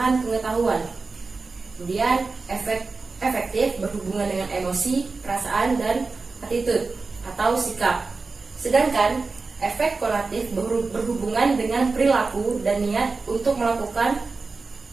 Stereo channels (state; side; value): quieter; left; 4.0 dB